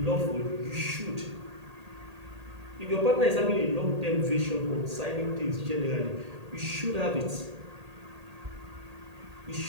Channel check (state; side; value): late; left; 1.8 ms